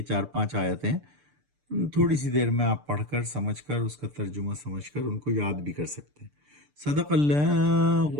4-5 آیتیں تھوڑی سی دیر میں آپ پڑھ کر سمجھ کر اس کا ترجمہ سمجھ کر ان کو یاد بھی کر سکتے ہیں۔ صدق اللہ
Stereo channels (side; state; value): left; late; 6.8 ms